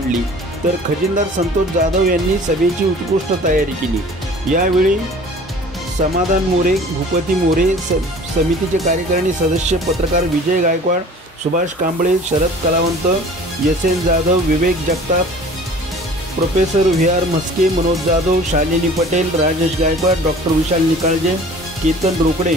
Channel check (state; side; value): normal; both; correlation 0.46